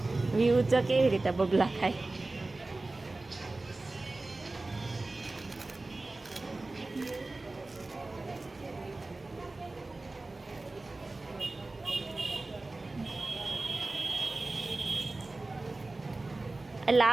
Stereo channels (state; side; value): quieter; left; 3.1 dB